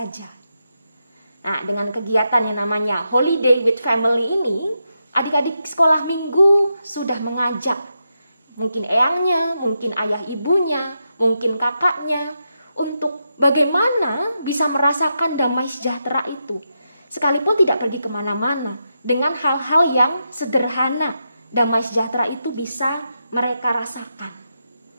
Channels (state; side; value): inverted; both; correlation -0.86